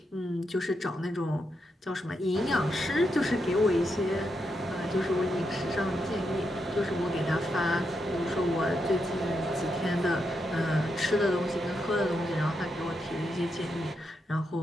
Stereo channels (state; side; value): normal; both; correlation 0.83